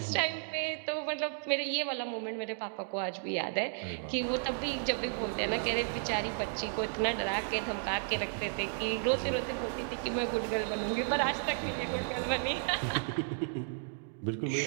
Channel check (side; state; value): left; silent; digital silence